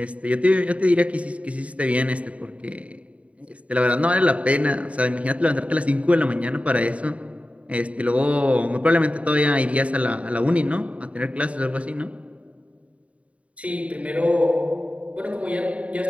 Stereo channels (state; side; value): late; left; 0.065 ms